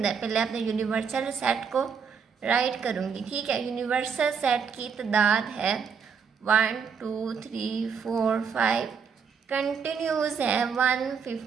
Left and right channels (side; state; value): left; quieter; 6.3 dB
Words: पहले अपने यूनिवर्सल सेट को राइट करूँगी, ठीक है। यूनिवर्सल सेट की तादाद है 1 2 3 4 5, कंटिन्यूस है